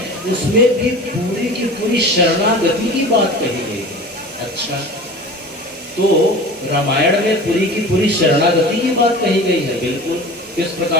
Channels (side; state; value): both; normal; correlation 0.37